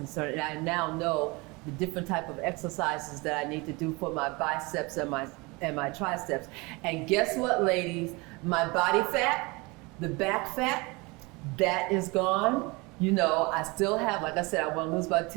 And I now know the different type of exercises that I need to do for my biceps and my triceps. And guess what, ladies? My body fat, the back fat, that is gone. You know, I still have, like I said, I want to lose about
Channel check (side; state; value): left; quieter; 25.9 dB